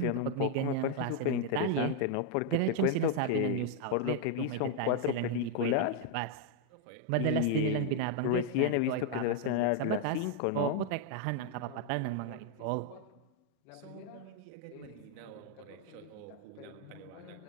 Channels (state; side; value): different; both; correlation 0.00